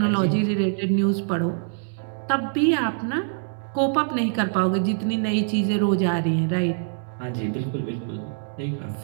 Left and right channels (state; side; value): silent; left; digital silence